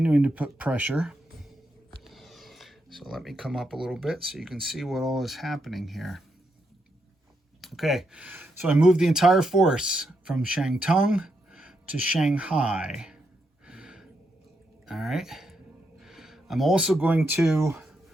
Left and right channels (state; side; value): normal; both; correlation 0.82